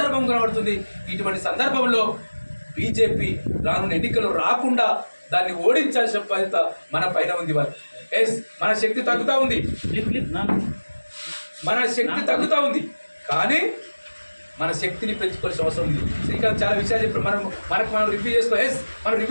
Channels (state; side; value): inverted; both; correlation -1.00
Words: కనబడుతుంది. ఇటువంటి సందర్భంలో బీజేపీ రానున్న ఎన్నికల్లో రాకుండా దాన్ని ఓడించాల్సిన బాధ్యత మన పైన ఉంది. మన శక్తి తగ్గుతూ ఉంది, మన శక్తి తగ్గుతూ ఉంది, కానీ మన శక్తిని పెంచుకోవాల్సిన అవసరం ఉంది. శ్రీకాంత్ చాలా విషయాలు చెప్పారు. మనం రివ్యూ చేసుకోవాలి. మనం